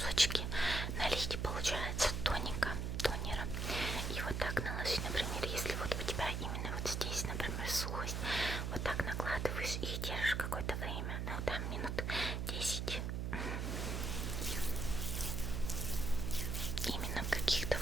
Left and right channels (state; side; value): noise; right; hum, 1 dB below the sound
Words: налить, получается, тонера. И вот так наложить, например, если вот у тебя именно вот здесь, например, сухость, вот так накладываешь и держишь какое-то время, ну там минут 10. Именно в каких-то